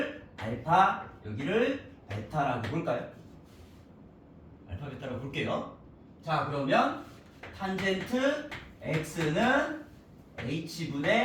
알파, 여기를 베타라고 볼까요? 알파, 베타라고 볼게요. 자, 그러면 탄젠트 x는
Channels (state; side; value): identical; both; correlation 1.00